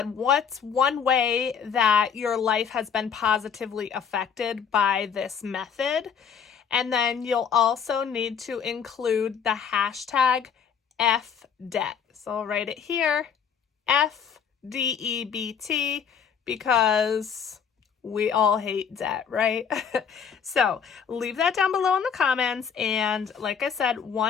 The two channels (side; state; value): right; quieter; 7.2 dB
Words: what's one way that your life has been positively affected by this method? And then you'll also need to include the hashtag FDEBT. So I'll write it here, FDEBT, because we all hate debt, right? So leave that down below in the comments. And like I said,